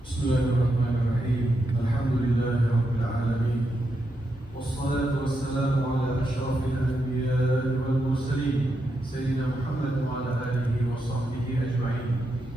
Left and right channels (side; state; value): both; normal; correlation 0.84